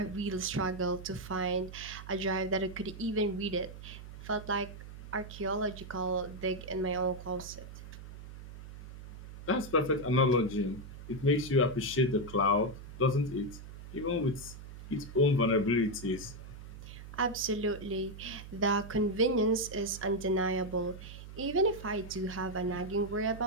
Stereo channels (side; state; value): right; noise; hum, 13 dB below the sound